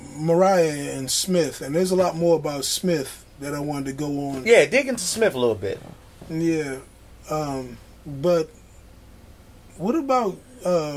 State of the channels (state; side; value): identical; both; correlation 1.00